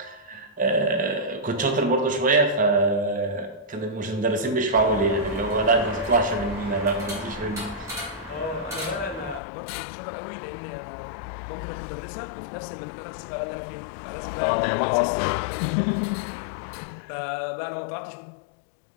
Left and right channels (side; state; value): right; drops out; at 9.4 s